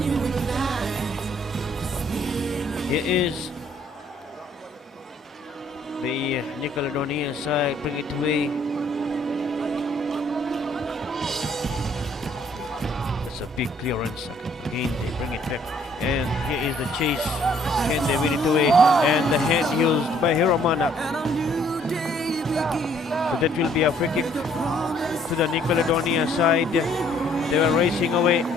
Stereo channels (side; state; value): both; normal; correlation 0.63